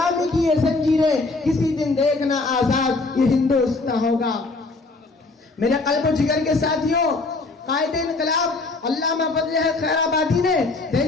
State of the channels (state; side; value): quieter; right; 3.5 dB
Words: کی یہ زنجیریں، کسی دن دیکھنا آزاد یہ ہندوستان ہوگا. میرے قلب و جگر کے ساتھیوں، قائد انقلاب علامہ فضل خیر آبادی نے